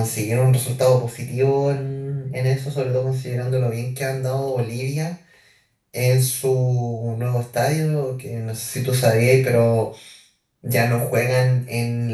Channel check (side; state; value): both; identical; correlation 1.00